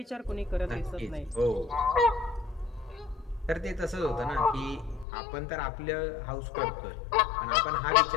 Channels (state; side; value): drops out; right; at 5.1 s